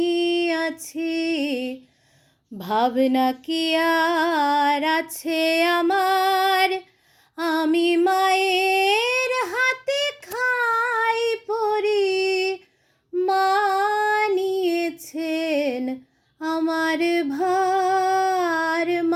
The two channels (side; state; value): both; identical; correlation 1.00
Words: আছি, ভাবনা কি আর আছে আমার। আমি মায়ের হাতে খাই পড়ি, মা নিয়েছেন আমার ভার।